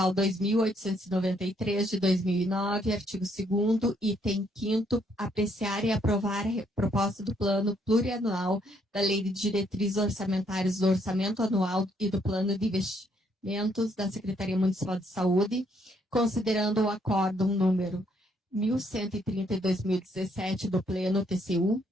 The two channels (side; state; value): both; normal; correlation 0.70